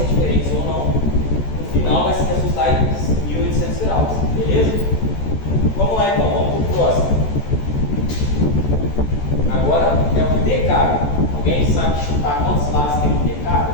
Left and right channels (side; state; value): right; late; 14 ms